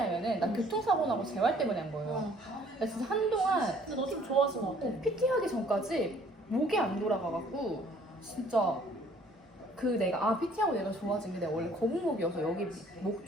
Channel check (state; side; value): normal; both; correlation 0.58